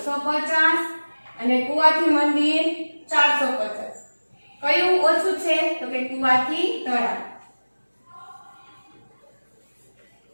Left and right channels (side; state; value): both; inverted; correlation -1.00